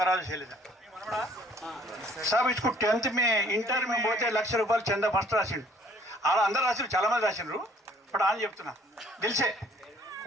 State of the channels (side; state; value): both; normal; correlation 0.58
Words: శైలజ. సాబ్ ఇచ్చుకు 10th ఇంటర్ మేము పోతే ₹1,00,000 చందా ఫస్ట్ రాసిండు. అలా అందరు రాసిండ్రు, చాలా మంది రాసిండ్రు. ఇప్పుడు అని చెప్తున్నా, దిల్సే